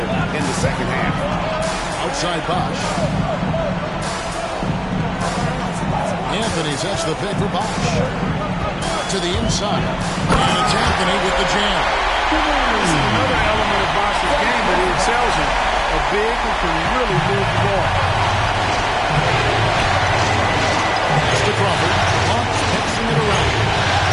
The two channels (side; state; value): both; identical; correlation 1.00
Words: in the second half. Outside Bosch. Anthony sets the pick for Bosch. To the inside. And it's Anthony with the jam. This is another element of Bosch's game that he excels in. A big who can really move the ball. Pass to Crawford. Hawks passing it around.